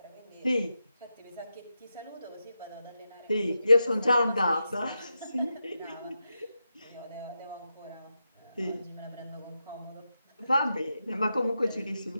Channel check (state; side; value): inverted; both; correlation -0.88